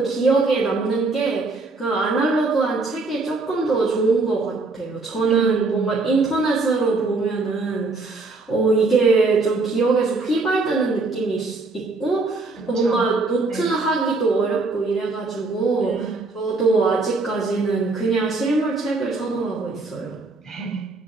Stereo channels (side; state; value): left; quieter; 3.6 dB